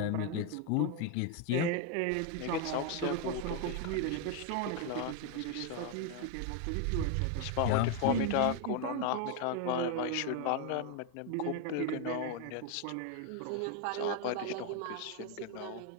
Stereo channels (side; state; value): both; different; correlation 0.01